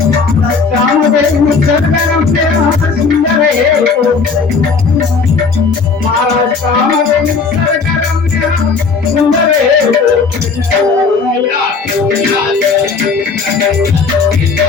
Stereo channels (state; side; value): quieter; right; 4.8 dB